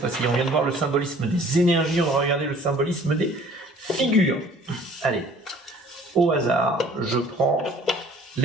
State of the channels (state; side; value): normal; both; correlation 0.53